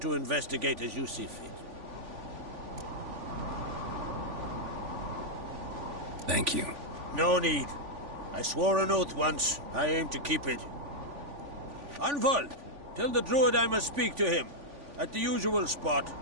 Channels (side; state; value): left; late; 3.5 ms